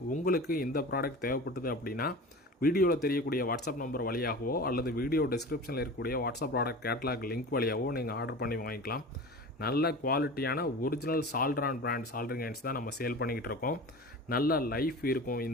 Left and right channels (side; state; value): both; normal; correlation 0.34